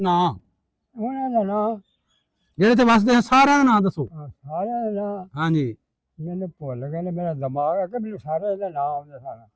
ਨਾਂ ਉਹਨਾਂ ਦਾ ਨਾਂ ਜਿਹੜੇ ਇੱਥੇ ਵੱਸਦੇ ਹਨ ਸਾਰਿਆਂ ਦਾ ਨਾਂ ਦੱਸੋ। ਸਾਰਿਆਂ ਦਾ ਨਾਂ ਹਾਂਜੀ, ਮੈਨੂੰ ਭੁੱਲ ਗਏ ਨੇ, ਮੇਰਾ ਦਿਮਾਗ ਹੈ ਕਿ ਮੈਨੂੰ ਸਾਰੇ ਦੇ ਨਾਂ ਆਉਂਦੇ ਸਨ।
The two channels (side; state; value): both; identical; correlation 1.00